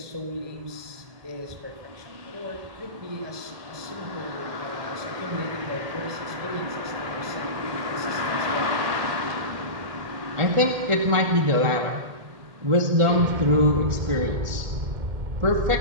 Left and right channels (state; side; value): late; left; 1.8 ms